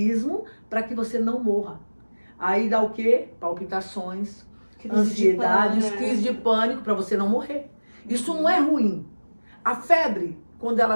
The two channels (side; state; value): both; inverted; correlation -1.00